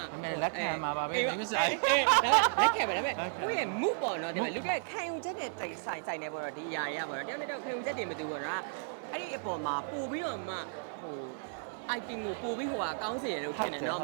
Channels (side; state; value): left; silent; 55 dB below the other